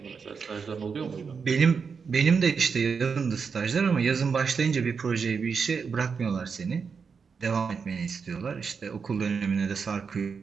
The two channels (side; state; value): left; quieter; 5.7 dB